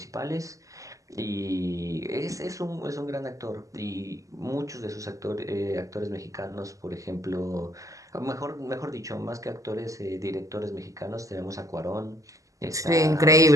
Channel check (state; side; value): late; left; 0.16 ms